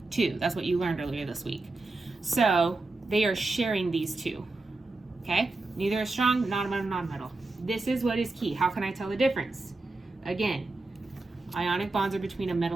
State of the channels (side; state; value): left; quieter; 3.2 dB